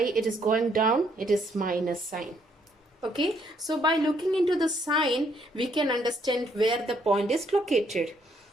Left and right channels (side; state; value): both; normal; correlation 0.70